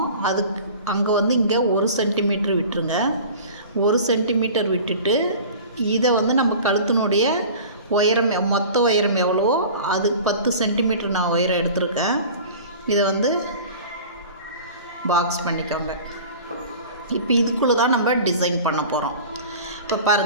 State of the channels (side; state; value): both; inverted; correlation -0.40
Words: அதுக்கு அங்கே வந்து இங்கே 1 சென்டிமீட்டர் விட்டுருங்க. 1 சென்டிமீட்டர் விட்டுட்டு இதை வந்து நம்ம கழுத்தினுடைய உயரம், மொத்த உயரம் எவ்வளோ அது 10 சென்டிமீட்டர் நான் உயரம் எடுத்திருக்கேன். இதை வந்து பாக்ஸ் பண்ணிக்கோங்க. இப்போ இதுக்குள்ளே தான் நம்ம டிசைன் பண்ண போகிறோம். இப்போ